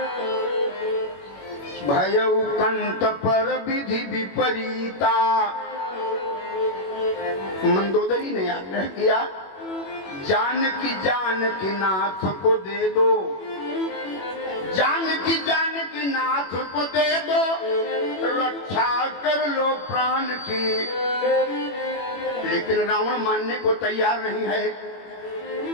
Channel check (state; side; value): late; right; 21 ms